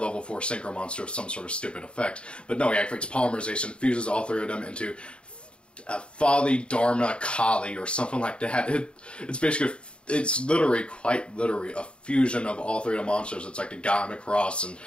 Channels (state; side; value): late; right; 0.055 ms